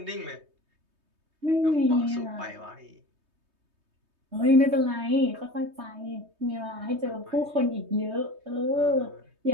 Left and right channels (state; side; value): late; left; 3.2 ms